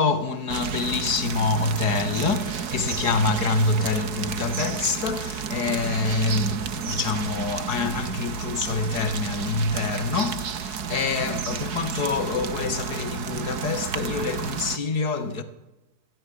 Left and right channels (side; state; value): left; late; 4.7 ms